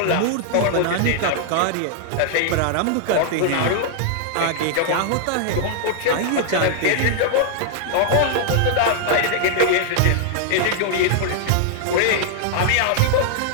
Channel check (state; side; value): different; both; correlation -0.01